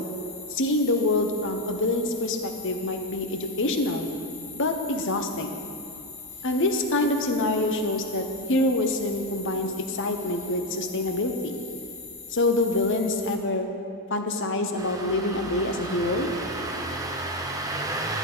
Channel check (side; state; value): both; normal; correlation 0.08